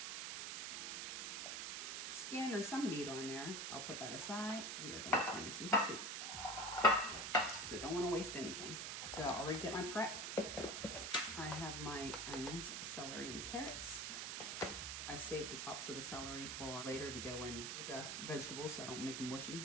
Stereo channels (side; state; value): right; noise; hiss, 3 dB below the sound